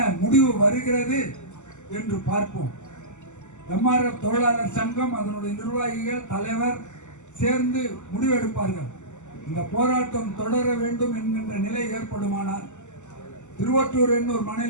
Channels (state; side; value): late; right; 0.84 ms